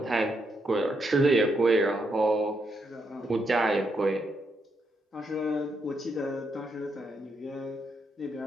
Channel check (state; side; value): normal; both; correlation 0.79